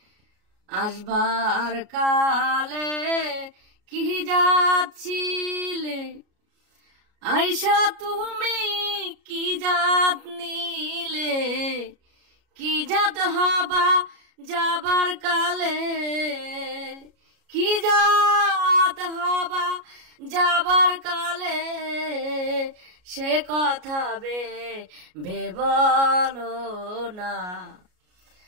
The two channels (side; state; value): left; late; 33 ms